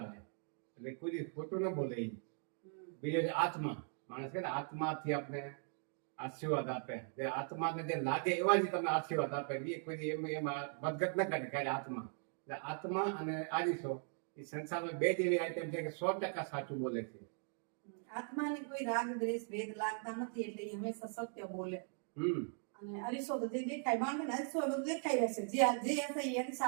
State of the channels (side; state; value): left; silent; 51 dB below the other